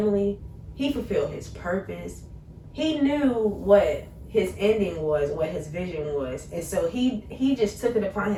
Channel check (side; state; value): both; identical; correlation 1.00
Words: He fulfilled his purpose. He knew what his ending was, what his vision was, and so he just took it upon